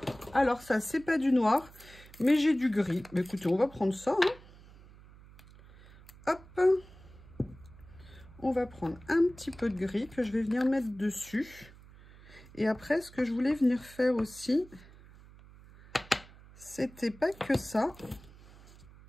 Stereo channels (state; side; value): noise; right; hum, 22 dB below the sound